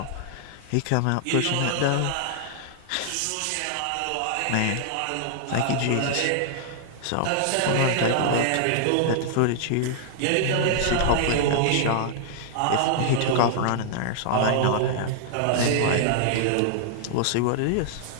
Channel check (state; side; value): different; both; correlation -0.01